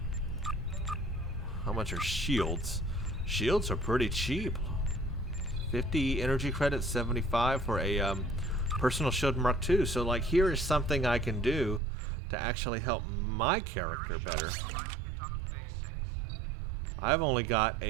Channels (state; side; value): drops out; left; at 11.8 s